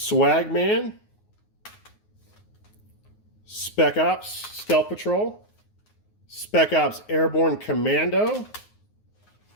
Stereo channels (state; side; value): late; right; 9.5 ms